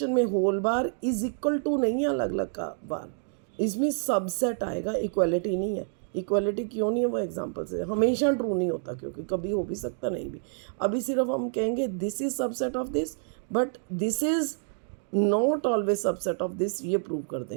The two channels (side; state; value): left; silent; 59 dB below the other